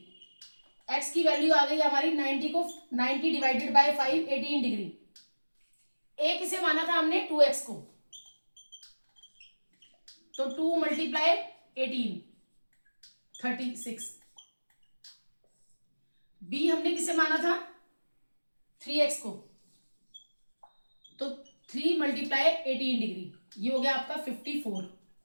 x की वैल्यू आ गई हमारी 90 को 90 डिवाइडेड बाय 5 18 डिग्री। a किसे माना था हमने 2x को, तो 2 मल्टीप्लाई 18 36। b हमने किसे माना था 3x को, तो 3 मल्टीप्लाई 18 डिग्री, ये हो गया आपका 54।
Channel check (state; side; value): inverted; both; correlation -1.00